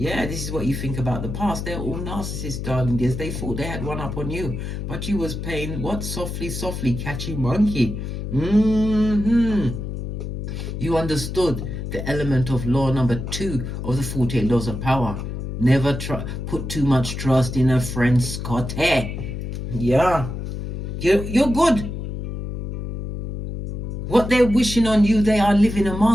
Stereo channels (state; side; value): noise; left; hum, 5 dB below the sound